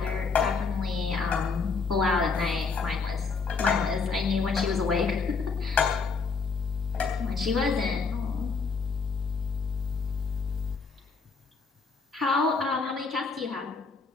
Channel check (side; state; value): right; quieter; 4.8 dB